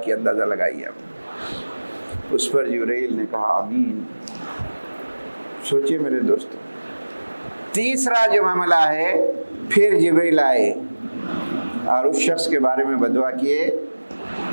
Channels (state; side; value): inverted; both; correlation -1.00